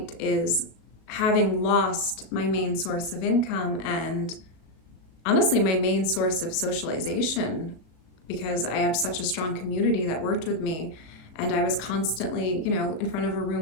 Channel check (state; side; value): late; right; 38 ms